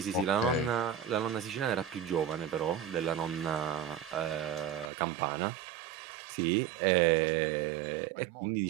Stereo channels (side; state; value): left; drops out; at 4.9 s